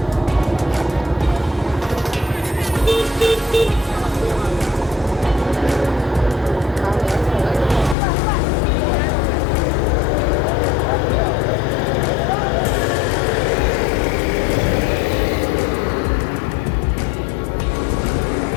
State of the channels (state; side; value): drops out; right; at 8.0 s